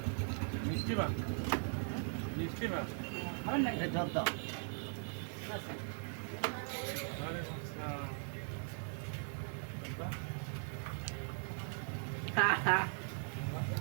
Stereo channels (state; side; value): silent; left; 51 dB below the other